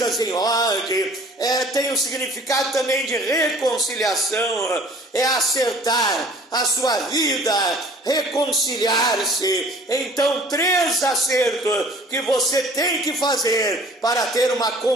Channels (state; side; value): normal; both; correlation 0.50